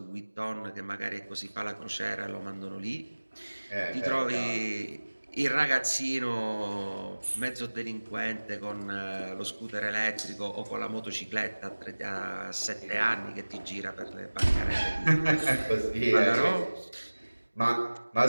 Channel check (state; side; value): inverted; both; correlation -1.00